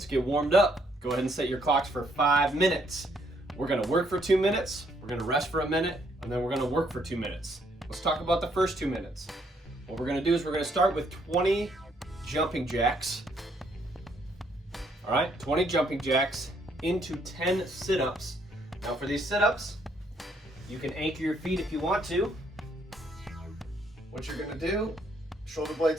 get warmed up. Go ahead and set your clocks for 5 minutes. We're gonna work for 2 minutes, we're gonna rest for a minute, and then we're gonna work for 2 minutes. Let's talk about the first 2 minutes. What we're gonna do is we're gonna start with 20 jumping jacks. All right, 20 jumping jacks into 10 sit-ups. Now for these sit-ups, you can anchor your feet if you want to. What you're gonna do, shoulder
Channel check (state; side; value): normal; both; correlation 0.70